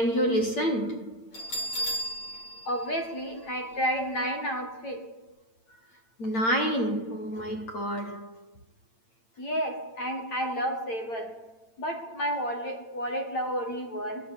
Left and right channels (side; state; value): right; late; 8.8 ms